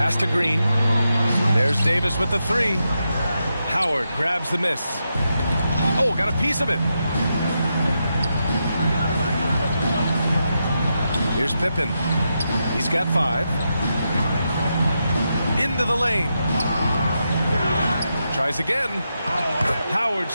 to Green. There's Davis with the three. Howard grabs the miss. Oh, got a piece of it. Here's Pippen. He's got 5. Into the lane. Tries again. Howard's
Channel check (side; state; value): both; inverted; correlation -0.86